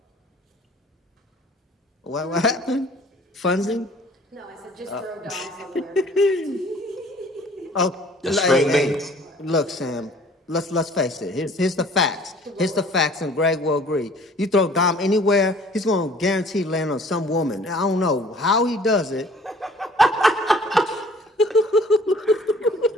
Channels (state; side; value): normal; both; correlation 0.53